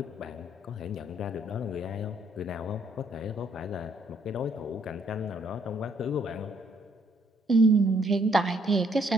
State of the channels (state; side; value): normal; both; correlation 0.69